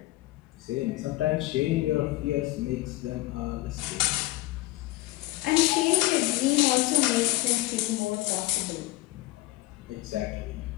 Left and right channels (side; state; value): right; quieter; 18.7 dB